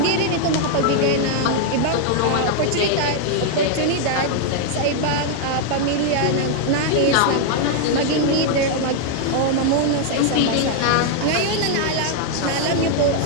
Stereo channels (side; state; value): both; different; correlation 0.00